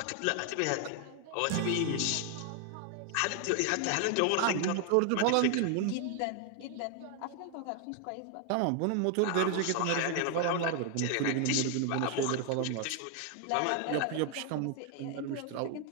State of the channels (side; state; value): both; different; correlation 0.00